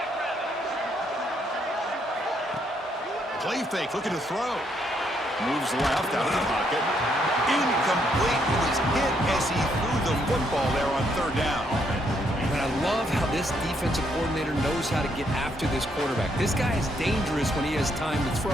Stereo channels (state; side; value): normal; both; correlation 0.73